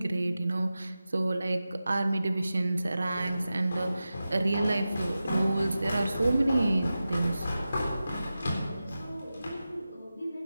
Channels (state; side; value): inverted; both; correlation -0.94